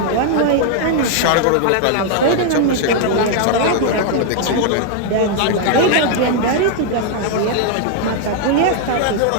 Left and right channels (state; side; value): different; both; correlation 0.00